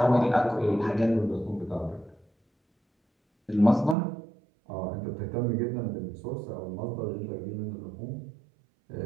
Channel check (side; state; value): left; drops out; at 4.0 s